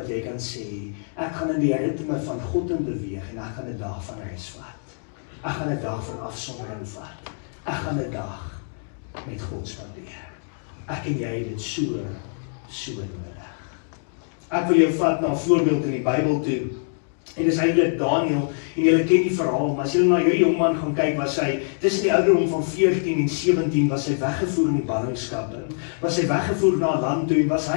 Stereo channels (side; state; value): right; silent; digital silence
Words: jy kan sê, ek gaan in die ritme van God in beweeg en ek gaan 'n dag van rus vat. Ek gaan 'n dag van afsondering vat. Ek gaan 'n dag met God spandeer. Ek en jy het dit so nodig. Ek wil jou vat na 'n voorbeeld in die Bybel toe. En dis eintlik Daniel, en julle ken die verhaal, maar as julle na hierdie jongman gaan kyk, was hy, tussen die ouderdom van 14 en 17, was hy weggevoer in die ballingskap, was hy weggevoer na 'n land toe, en was